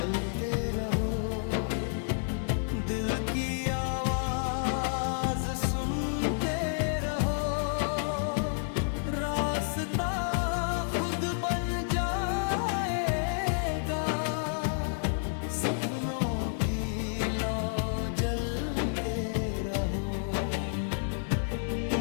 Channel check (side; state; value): right; silent; digital silence